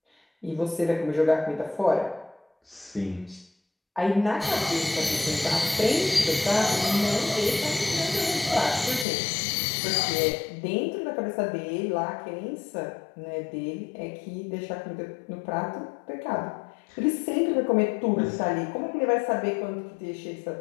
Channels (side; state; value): right; drops out; at 9.1 s